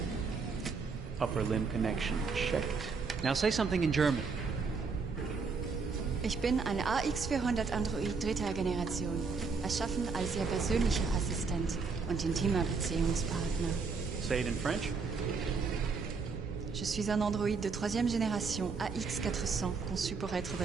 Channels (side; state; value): left; quieter; 4.8 dB